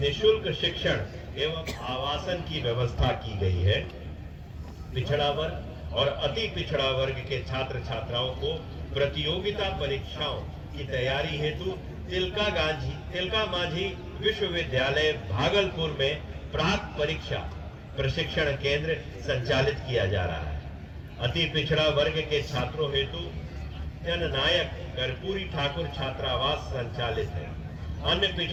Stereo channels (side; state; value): both; identical; correlation 1.00